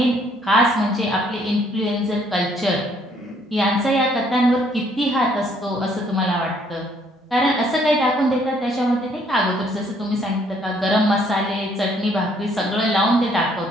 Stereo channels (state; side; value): normal; both; correlation 0.65